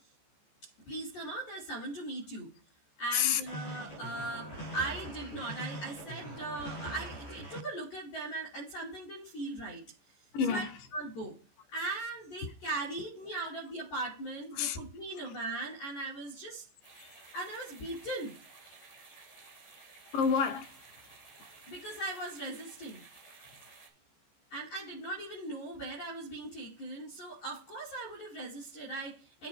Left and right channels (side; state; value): right; late; 14 ms